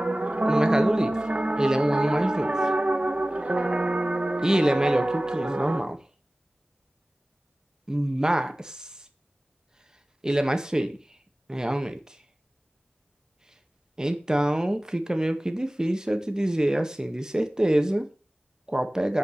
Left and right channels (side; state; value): both; normal; correlation 0.98